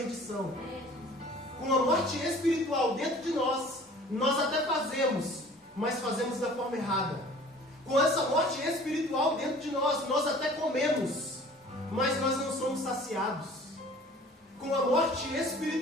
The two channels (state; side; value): normal; both; correlation 0.48